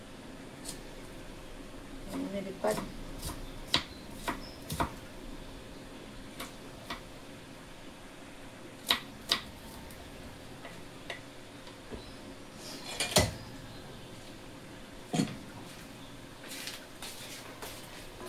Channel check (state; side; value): identical; both; correlation 1.00